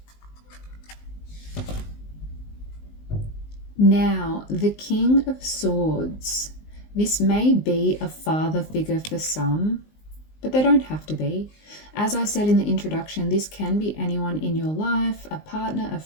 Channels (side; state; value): right; late; 19 ms